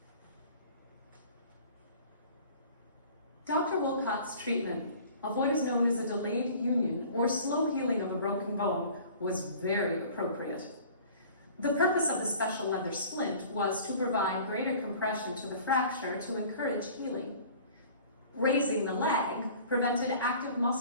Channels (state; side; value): inverted; both; correlation -0.47